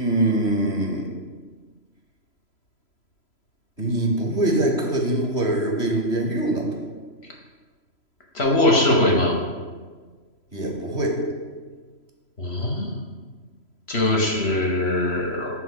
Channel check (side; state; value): right; late; 3.0 ms